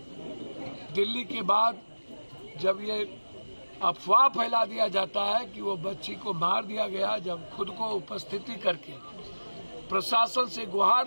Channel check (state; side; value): inverted; both; correlation -1.00